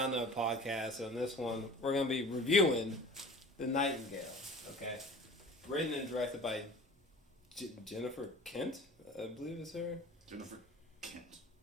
the podcast. On this one, we're gonna be reviewing The Nightingale, okay? Written and directed by Jennifer Kent, I believe is her. Jennifer Kent.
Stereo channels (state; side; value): normal; both; correlation 0.42